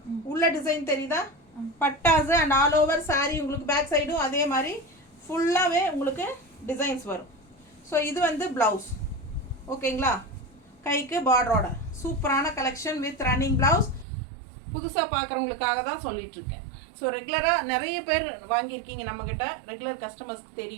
உள்ள டிசைன் தெரியுதா? பட்டாசு. அண்ட் ஆல் ஓவர் saree உங்களுக்கு பேக் சைடும் அதே மாதிரி ஃபுல்லாகவே உங்களுக்கு டிசைன்ஸ் வரும். ஸோ இது வந்து ப்ளவுஸ். ஓகேங்களா, கைக்கு பார்டரோட சூப்பரான கலெக்ஷன் வித் ரன்னிங் ப்ளவுஸ். புதுசாக பார்க்குறவங்களுக்காக தான் சொல்லிகிட்ருக்கேன். ஸோ ரெகுலராக நிறைய பேர் வாங்கியிருக்கீங்க நம்மக்கிட்ட, ரெகுலர் கஸ்டமர்ஸ்க்கு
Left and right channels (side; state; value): left; drops out; at 14.1 s